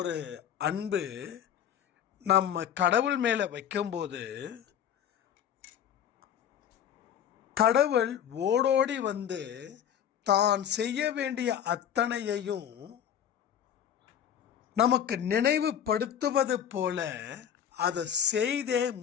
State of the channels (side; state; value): right; quieter; 9.4 dB